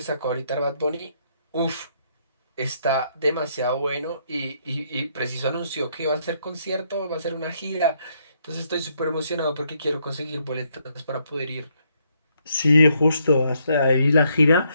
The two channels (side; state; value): both; inverted; correlation -0.73